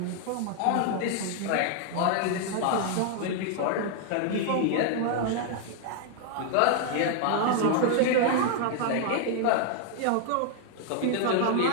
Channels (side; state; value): both; different; correlation 0.00